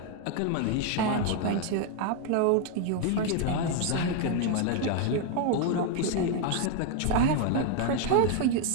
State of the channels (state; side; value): different; both; correlation 0.00